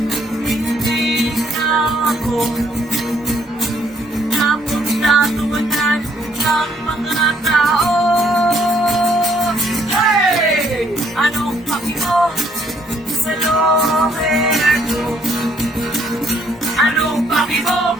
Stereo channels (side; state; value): both; normal; correlation 0.67